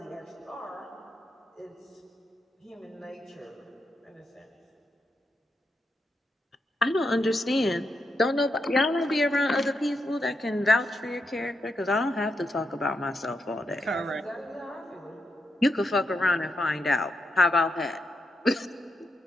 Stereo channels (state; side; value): normal; both; correlation 0.83